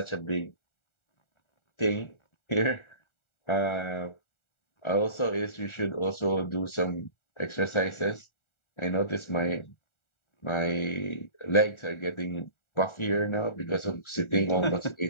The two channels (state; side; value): late; right; 1.4 ms